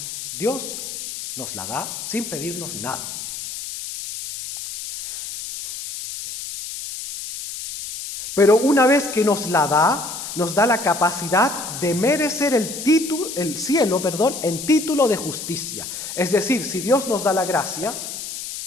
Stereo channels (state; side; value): noise; left; hiss, 8 dB below the sound